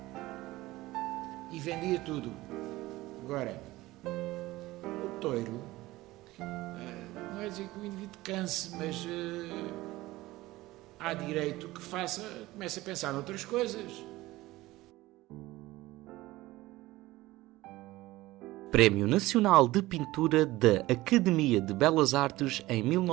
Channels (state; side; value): quieter; left; 18.3 dB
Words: e vendia tudo. Agora, o touro, não é dizer que o indivíduo canse, mas há direito que comece a pensar noutras coisas. Prémio Nacional de Pintura da Academia de Belas Artes em